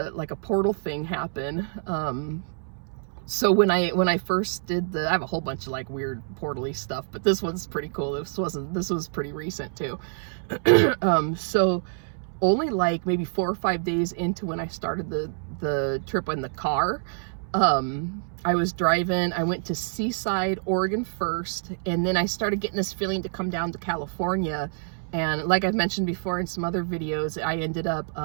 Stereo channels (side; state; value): left; silent; 60 dB below the other